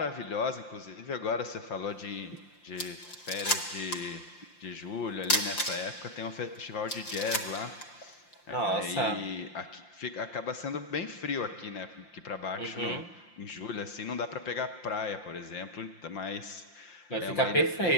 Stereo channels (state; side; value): late; right; 5.8 ms